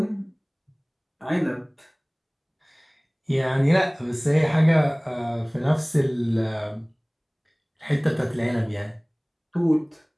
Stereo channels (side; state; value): both; identical; correlation 1.00